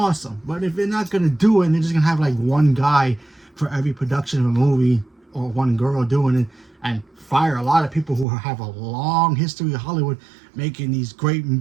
But if they're not gonna do it and they're just gonna have like one guy for every production of a movie or one girl doing it and fire a lot of people who have a long history of Hollywood making these great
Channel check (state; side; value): drops out; left; at 8.2 s